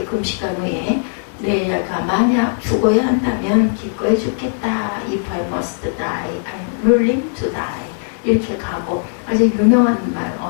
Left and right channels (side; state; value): right; silent; 67 dB below the other